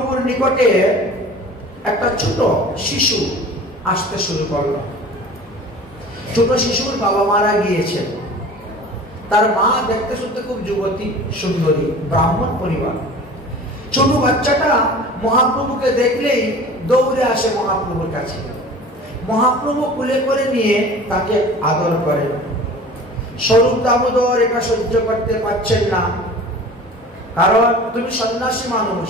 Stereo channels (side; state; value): both; normal; correlation 0.41